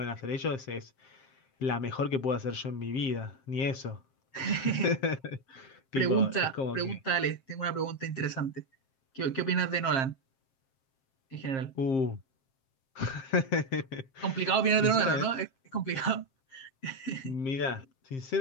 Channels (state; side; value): late; right; 7.6 ms